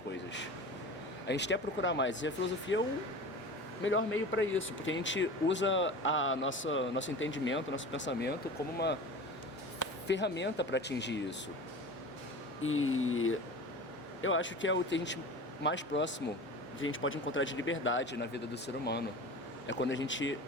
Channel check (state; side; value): normal; both; correlation 0.34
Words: A gente quer procurar mais, e a filosofia é o melhor meio para isso, porque a gente usa nosso entendimento, nosso pensamento como uma ferramenta para atingir isso. E eu acho que é o que a gente mais próximo que a gente pode encontrar de liberdade na vida do ser humano. É quando a gente